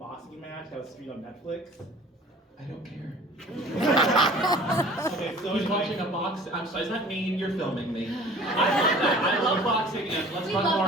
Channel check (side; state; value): both; normal; correlation 0.47